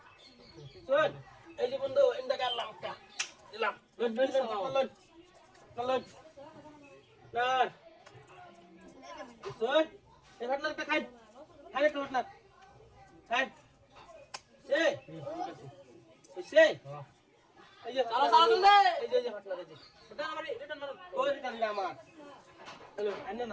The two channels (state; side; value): identical; both; correlation 1.00